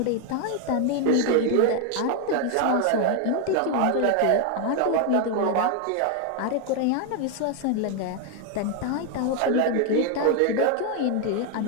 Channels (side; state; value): both; different; correlation 0.01